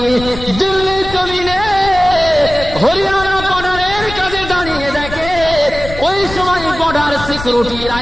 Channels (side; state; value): left; noise; rumble, 11 dB below the sound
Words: দিল্লি জমিনে হরিয়ানা বর্ডারের কাছে দাঁড়িয়ে দেখে, ওই সময় বর্ডার সিকিউরিটি